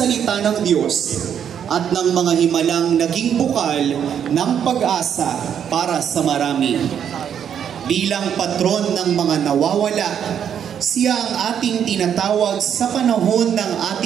ng Diyos at ng mga himalang naging bukal ng pag-asa para sa marami. Bilang patron ng mga nawawala, siya ang ating tinatawag sa panahon ng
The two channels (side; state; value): left; quieter; 8.6 dB